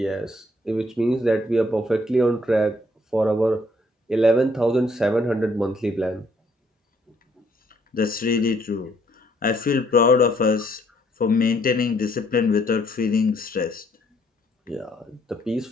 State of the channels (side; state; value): both; normal; correlation 0.67